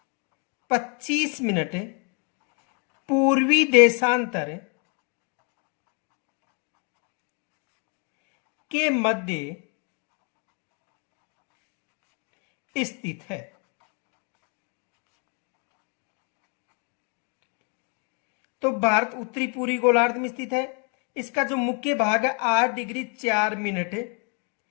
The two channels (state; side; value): quieter; right; 36.8 dB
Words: 25 मिनट पूर्वी देशांतर के मध्य स्थित है। तो भारत उत्तरी पूर्वी गोलार्ध में स्थित है। इसका जो मुख्य भाग है 8 डिग्री 4 मिनट